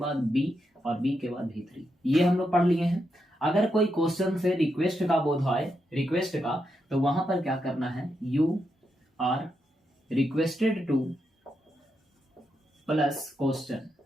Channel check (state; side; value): normal; both; correlation 0.83